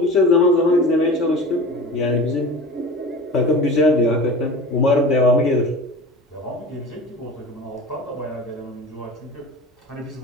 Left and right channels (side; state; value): both; normal; correlation 0.34